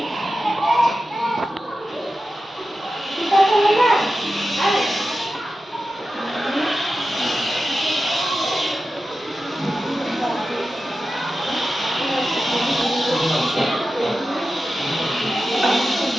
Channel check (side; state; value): both; normal; correlation 0.92